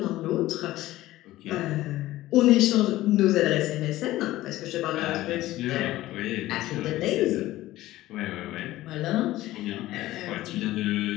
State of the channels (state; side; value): quieter; right; 16.1 dB